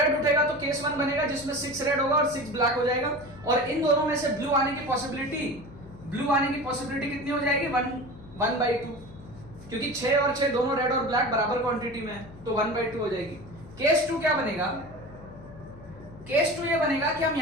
उठेगा तो केस 1 बनेगा जिसमें 6 रेड होगा और 6 ब्लैक हो जाएगा, और इन दोनों में से ब्लू आने की पॉसिबिलिटी कितनी हो जाएगी, 1/2, क्योंकि 6 और 6 दोनों रेड और ब्लैक बराबर क्वांटिटी में है, तो 1/2 हो जाएगी। केस 2 क्या बनेगा, केस 2 ये बनेगा कि हम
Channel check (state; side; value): noise; left; hum, 18 dB below the sound